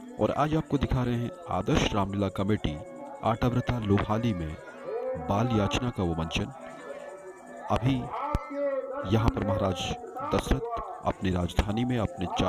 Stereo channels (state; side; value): identical; both; correlation 1.00